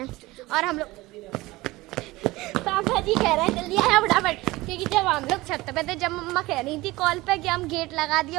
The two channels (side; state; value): left; quieter; 19.9 dB